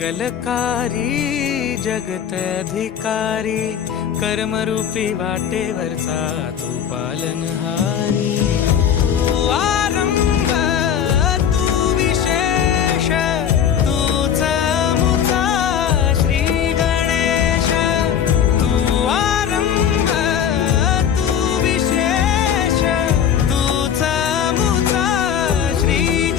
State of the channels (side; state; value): right; quieter; 8.7 dB